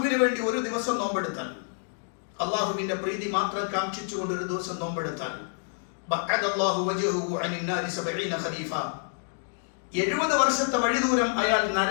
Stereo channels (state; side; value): silent; right; digital silence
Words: വേണ്ടി ഒരു ദിവസം നോമ്പെടുത്താൽ, അല്ലാഹുവിന്റെ പ്രീതി മാത്രം കാംക്ഷിച്ചുകൊണ്ട് ഒരു ദിവസം നോമ്പെടുത്താൽ, ബഅദല്ലാഹു വജ്ഹഹു അനിൻ നാരി 70 ഖരീഫ, 70 വർഷത്തെ വഴിദൂരം അയാൾ